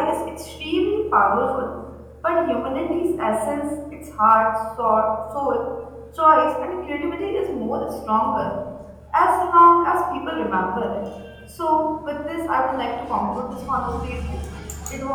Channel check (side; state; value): both; identical; correlation 1.00